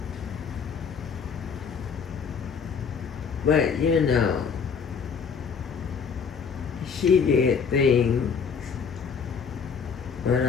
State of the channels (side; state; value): right; quieter; 6.2 dB